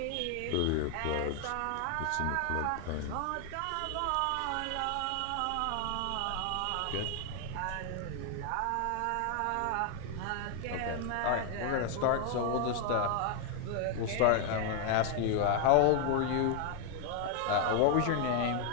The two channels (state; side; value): different; both; correlation 0.00